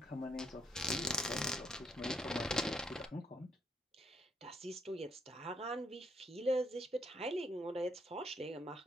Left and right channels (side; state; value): both; normal; correlation 0.73